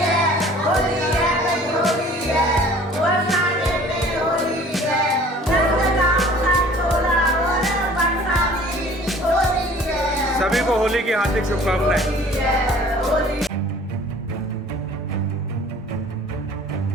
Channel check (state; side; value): normal; both; correlation 0.50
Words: सभी को होली की हार्दिक शुभकामनाएं।